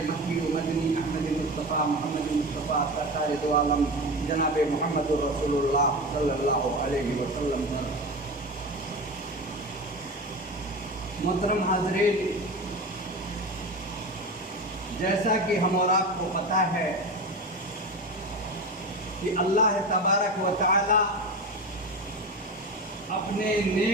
مکی و مدنی احمد مصطفیٰ محمد مصطفیٰ سرکار دو عالم جناب محمد رسول اللہ صلی اللہ علیہ وسلم پر. محترم حاضرین، جیسا کہ ہم اور آپ کو پتہ ہے کہ اللہ تبارک و تعالی اپنے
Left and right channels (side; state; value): both; normal; correlation 0.26